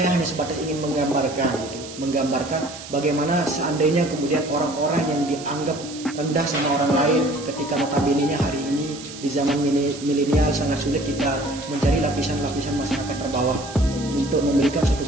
hanya sebatas ingin menggambarkan gitu. menggambarkan bagaimana seandainya kemudian orang-orang yang dianggap rendah sama orang lain ketika notabene-nya hari ini di zaman milenial sangat sulit kita mencari lapisan-lapisan masyarakat terbawah untuk memberikan suatu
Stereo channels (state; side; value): noise; right; hiss, 14 dB below the sound